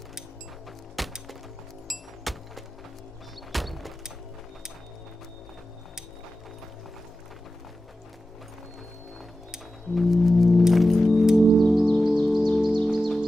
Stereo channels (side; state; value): both; normal; correlation 0.93